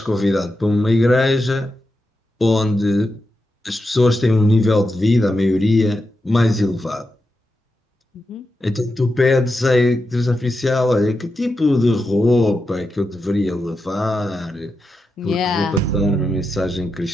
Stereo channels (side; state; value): both; normal; correlation 0.88